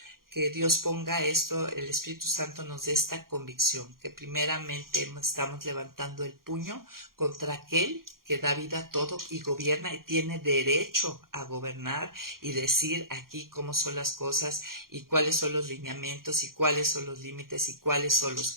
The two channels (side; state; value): left; late; 0.92 ms